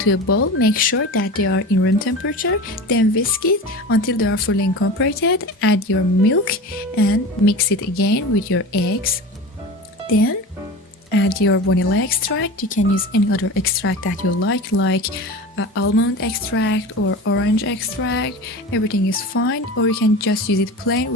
a bowl. Make sure that they are in room temperature, then whisk it until they are fully incorporated. Add your milk and mix it again with your eggs. Then add your vanilla extract. You can use any other extract that you like almond extract or orange extract. Everything is fine, or you can just use it plain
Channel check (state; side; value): normal; both; correlation 0.31